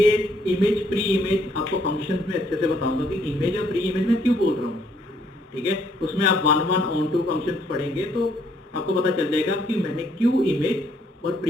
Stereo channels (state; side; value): normal; both; correlation 0.68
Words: इमेज प्री इमेज आपको फंक्शंस में अच्छे से बताऊंगा कि इमेज और प्री इमेज में क्यों बोल रहा हूँ, ठीक है। उसमें आप 1 1 ऑन 2 फंक्शंस पढ़ेंगे तो आपको पता चल जाएगा कि मैंने क्यों इमेज और